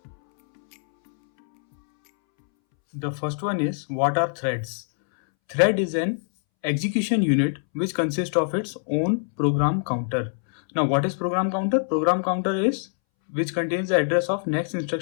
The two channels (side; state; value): right; silent; 63 dB below the other